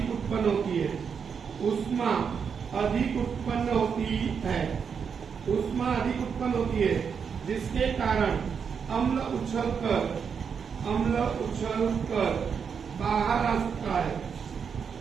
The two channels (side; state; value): left; quieter; 6.6 dB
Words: उत्पन्न होती है जिसके कारण अम्ल उछलकर बाहर आ सकता है